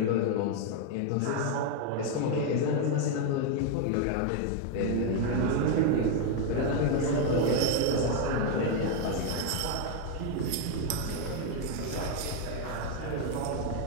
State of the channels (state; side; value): different; both; correlation 0.01